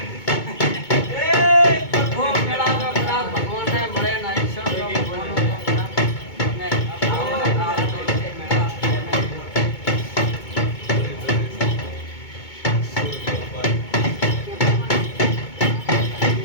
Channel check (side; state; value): right; late; 2.2 ms